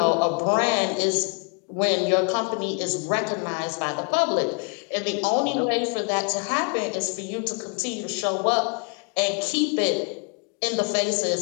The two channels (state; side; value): quieter; right; 38.3 dB